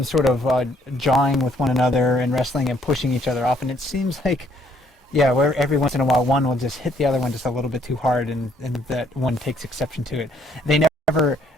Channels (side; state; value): both; normal; correlation 0.67